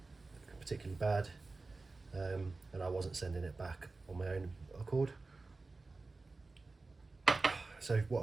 particularly bad, and I wasn't sending it back on my own accord. So what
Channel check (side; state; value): left; quieter; 3.6 dB